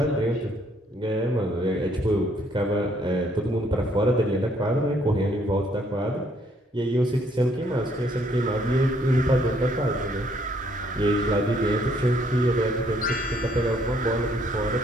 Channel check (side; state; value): both; normal; correlation 0.67